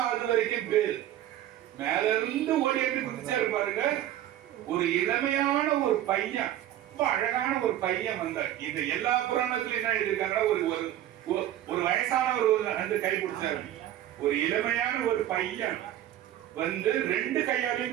அது வரைக்கும் பேரு. மேல இருந்து ஓடி எப்படி குதிச்சாரு பாருங்க. ஒரு இளமையான ஒரு பையன், ரொம்ப அழகான ஒரு பையன் வந்தார். இந்த எல்லா புராணத்திலும் என்ன எழுதியிருக்காங்கன்னா, ஒரு வயசானவர் வந்து கை பிடிச்சாரு. ஒரு இளமையான ஒரு பையன் வந்து 2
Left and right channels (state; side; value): quieter; left; 12.6 dB